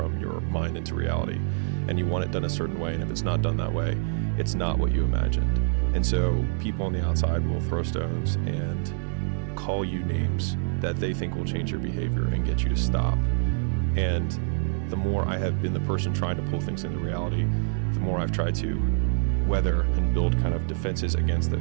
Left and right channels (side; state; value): left; silent; digital silence